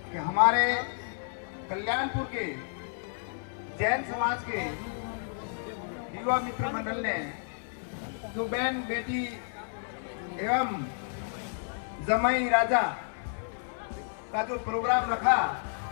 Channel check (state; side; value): silent; right; 55 dB below the other